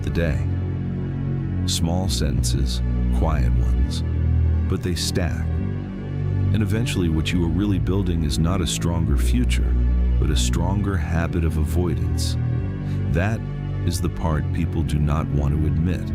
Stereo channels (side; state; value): both; identical; correlation 1.00